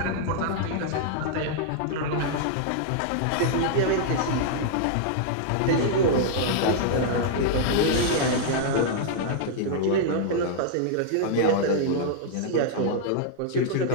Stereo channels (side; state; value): both; different; correlation -0.01